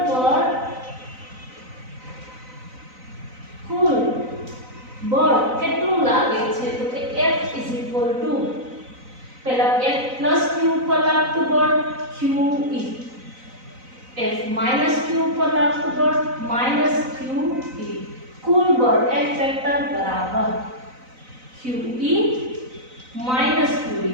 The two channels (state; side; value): late; left; 4.0 ms